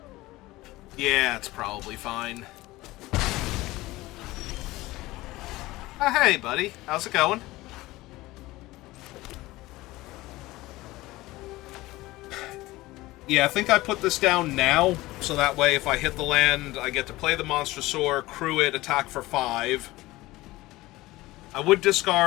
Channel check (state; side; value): quieter; right; 18.9 dB